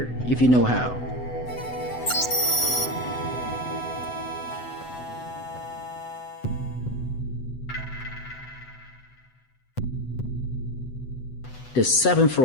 if you know how. The 7th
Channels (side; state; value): right; late; 8.0 ms